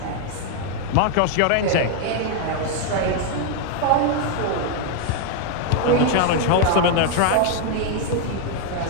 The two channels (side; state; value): both; different; correlation 0.00